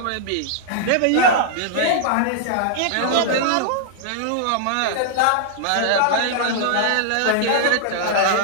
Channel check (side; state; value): both; different; correlation -0.01